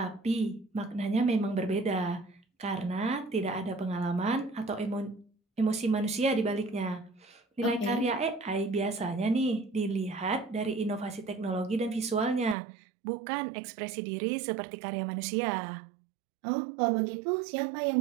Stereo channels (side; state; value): left; drops out; at 12.6 s